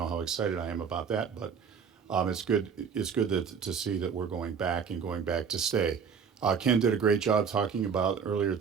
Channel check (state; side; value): quieter; left; 6.5 dB